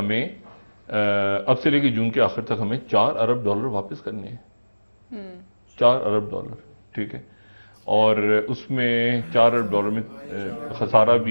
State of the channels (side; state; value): both; inverted; correlation -1.00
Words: अब से लेके जून के आखिर तक हमें $4 अरब वापस करने हैं। $4 अरब, ठीक है। और उसमें $4 अरब में खसारा